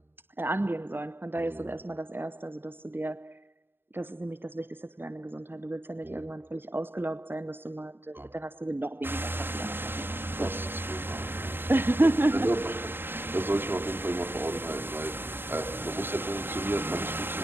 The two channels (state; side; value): late; left; 0.10 ms